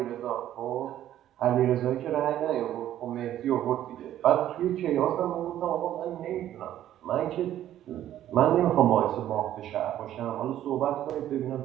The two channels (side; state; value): left; quieter; 12.1 dB